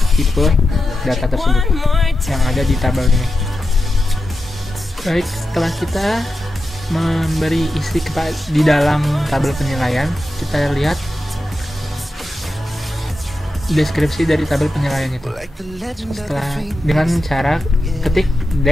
tipe data tersebut yang ada di tabel ini. Baik, setelah kita memberi isi di dalam tabel penilaian, kita lihat deskripsi dari tabel penilaian itu. Setelah dengan cara ketik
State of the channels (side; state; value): both; normal; correlation 0.90